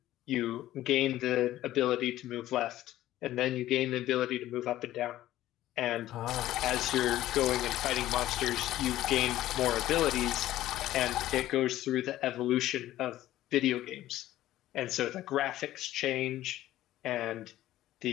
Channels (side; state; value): right; quieter; 14.3 dB